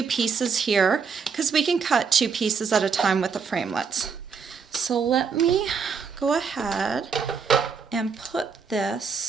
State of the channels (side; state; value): left; quieter; 5.8 dB